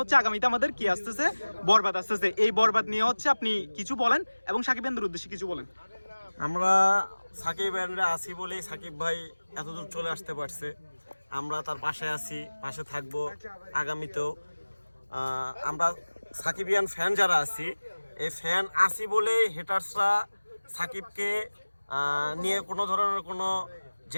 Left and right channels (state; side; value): inverted; both; correlation -1.00